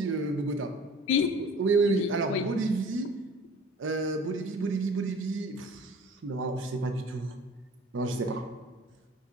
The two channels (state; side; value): normal; both; correlation 0.46